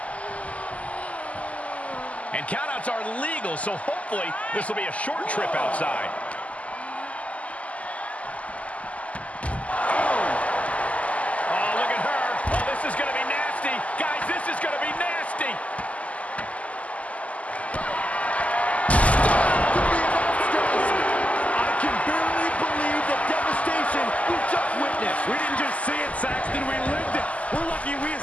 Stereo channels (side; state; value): right; late; 0.069 ms